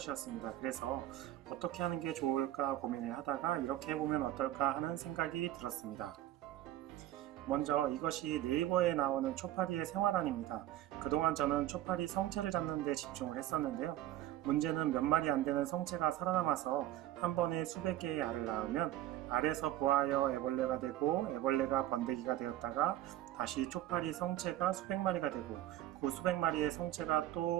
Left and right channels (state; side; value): quieter; left; 13.9 dB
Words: 그래서 어떻게 하는 게 좋을까 고민을 하다가 이렇게 해보면 어떨까 하는 생각이 들었습니다. 먼저 이것이 네이버에 나오는 초파리의 생활안입니다. 그동안 저는 초파리 성체를 잡는 데 집중을 했었는데요. 문제는 몇 마리 안 되는 성체가 살아남아서 한 번에 수백 개의 알을 낳으면 알에서 부화하여 애벌레가 되고 애벌레가 번데기가 되었다가 다시 초파리 성체가 수백 마리가 되고 그 수백 마리의 성체가